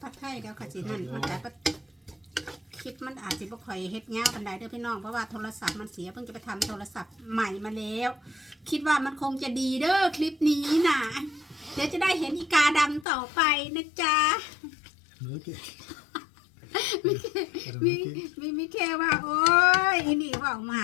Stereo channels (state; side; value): drops out; right; at 13.1 s